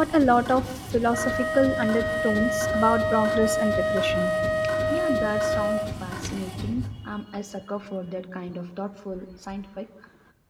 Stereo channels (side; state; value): both; identical; correlation 1.00